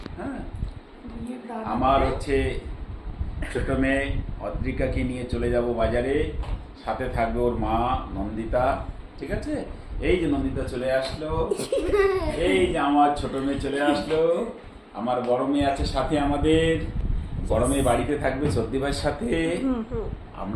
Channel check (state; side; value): identical; both; correlation 1.00